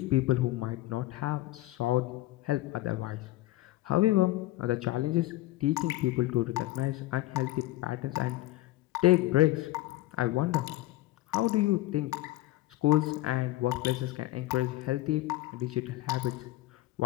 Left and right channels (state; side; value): quieter; right; 16.9 dB